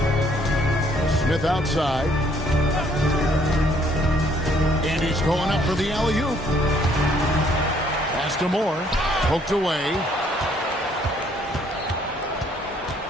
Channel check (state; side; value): normal; both; correlation 0.64